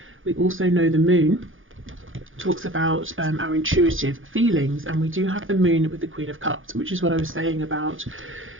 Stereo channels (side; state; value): left; late; 0.58 ms